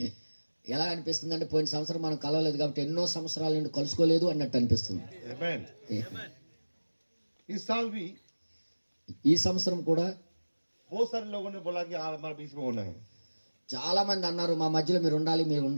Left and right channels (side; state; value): both; inverted; correlation -1.00